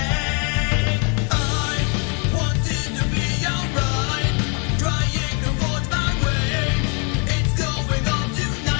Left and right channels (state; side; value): quieter; right; 35.8 dB